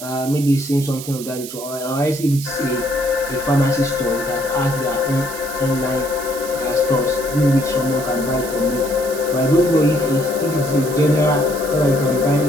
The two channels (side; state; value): right; noise; hiss, 11 dB below the sound